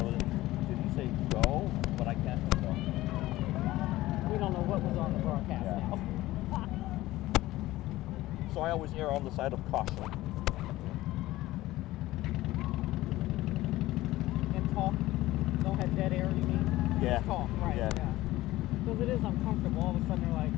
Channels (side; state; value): right; quieter; 17.0 dB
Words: know, did he say go? But I can't tell. We don't know what was on the broadcast. Yeah. So I always err on the side of caution. And talk, don't have dead air, you mean? Yeah. Just talk, right, Yeah. Because it is uncomfortable. All of a sudden they're like,